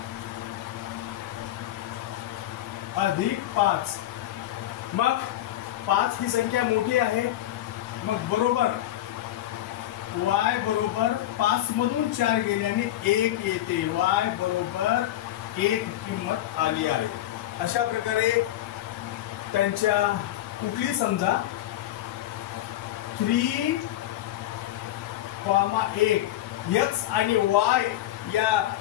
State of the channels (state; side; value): quieter; right; 13.7 dB